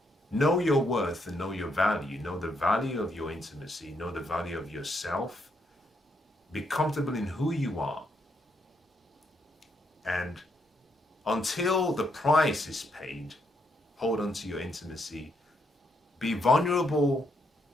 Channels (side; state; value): both; normal; correlation 0.76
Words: Know your worth and know your value. Know the value of your intimacy. Know the value of yourself. Be comfortable in who you are. And until the price is paid, hold on to your intimacy. Be vulnerable